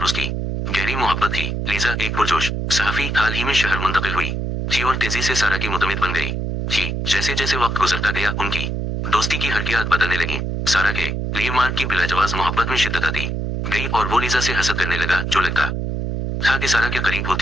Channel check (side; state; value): right; noise; hum, 2 dB below the sound